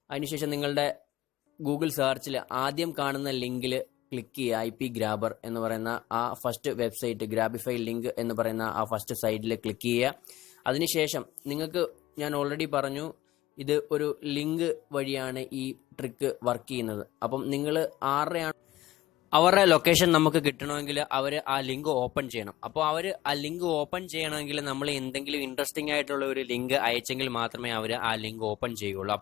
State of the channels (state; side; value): quieter; right; 15.9 dB